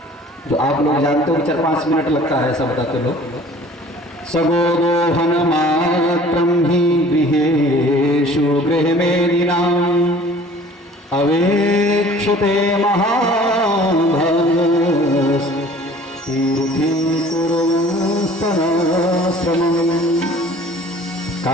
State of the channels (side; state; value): both; normal; correlation 0.49